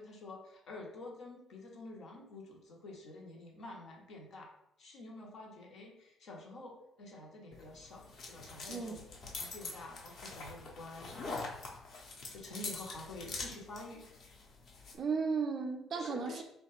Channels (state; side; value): normal; both; correlation 0.67